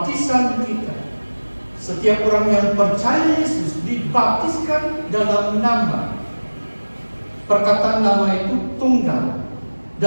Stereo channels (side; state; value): both; inverted; correlation -1.00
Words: kita, setiap orang yang percaya Yesus dibaptiskan dalam nama. Perkataan nama itu tunggal.